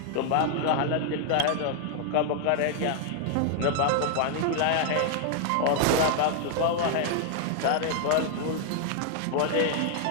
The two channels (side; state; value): both; different; correlation 0.00